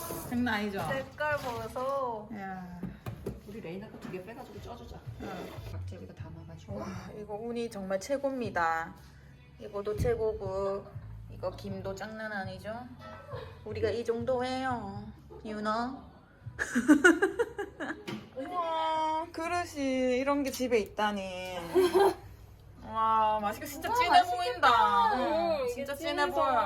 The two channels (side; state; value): both; identical; correlation 1.00